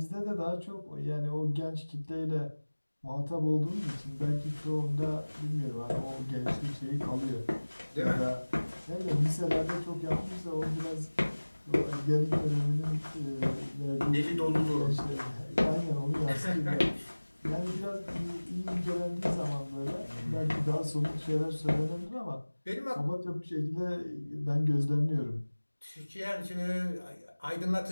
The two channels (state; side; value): inverted; both; correlation -1.00